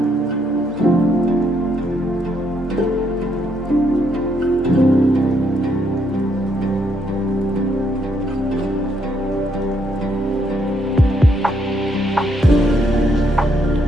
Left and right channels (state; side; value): normal; both; correlation 0.74